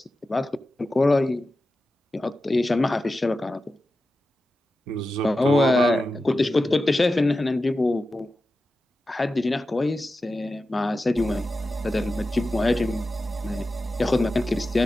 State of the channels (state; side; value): normal; both; correlation 0.92